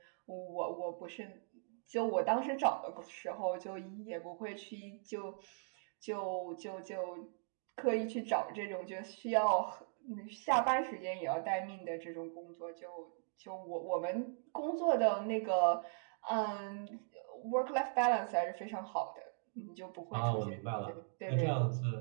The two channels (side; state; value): left; silent; digital silence